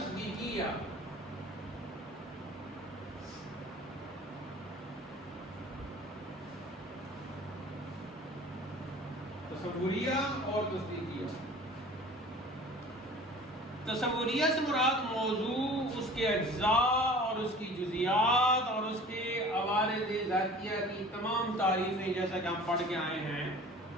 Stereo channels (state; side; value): normal; both; correlation 0.44